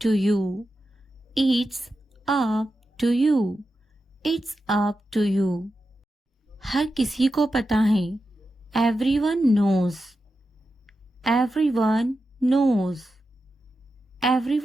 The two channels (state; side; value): normal; both; correlation 0.90